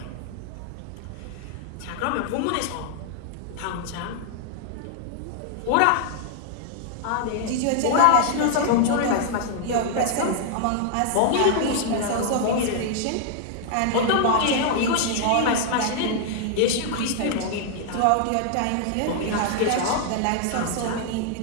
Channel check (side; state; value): both; different; correlation -0.01